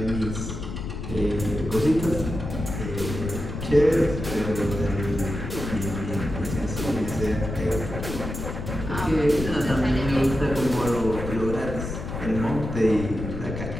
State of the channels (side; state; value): left; noise; rumble, 6 dB below the sound